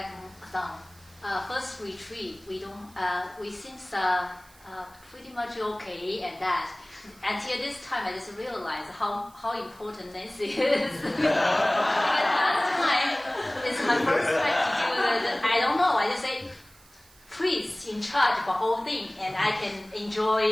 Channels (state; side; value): noise; right; hiss, 26 dB below the sound